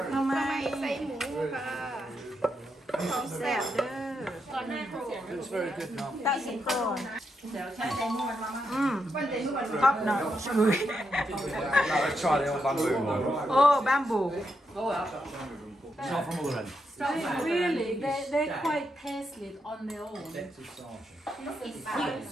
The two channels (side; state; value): both; normal; correlation 0.82